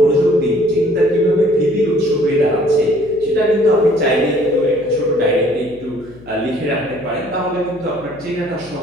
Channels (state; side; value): noise; left; hum, 23 dB below the sound